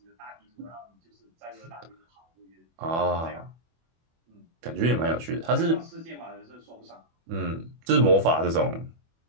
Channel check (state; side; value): late; left; 24 ms